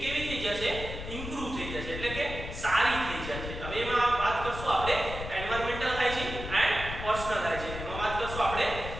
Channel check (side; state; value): left; noise; rumble, 8 dB below the sound